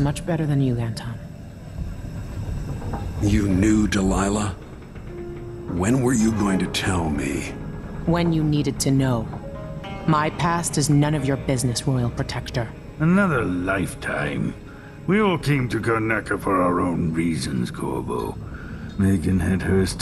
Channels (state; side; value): identical; both; correlation 1.00